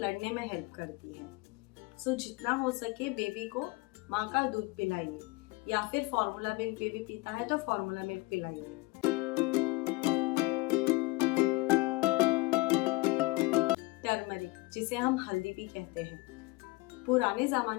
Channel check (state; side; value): quieter; right; 23.8 dB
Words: में हेल्प करती है। जितना हो सके बेबी को माँ का दूध पिलाइए, या फिर फॉर्मूला मिल्क बेबी पीता है तो फॉर्मूला मिल्क पिलाइए। टर्मरिक, जिसे हम हल्दी भी कहते हैं, पुराने